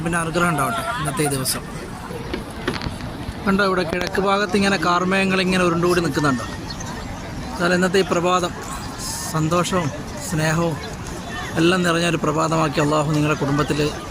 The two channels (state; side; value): identical; both; correlation 1.00